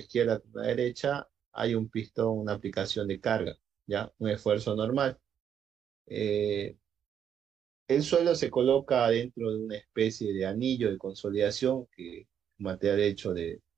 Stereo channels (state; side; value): quieter; left; 8.8 dB